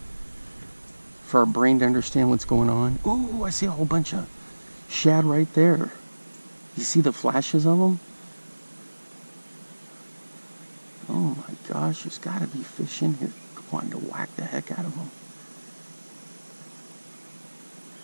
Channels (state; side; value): inverted; both; correlation -1.00